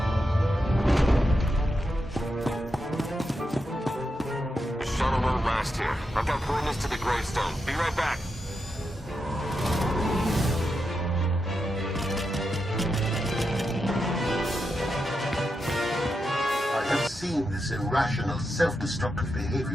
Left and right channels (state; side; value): normal; both; correlation 0.86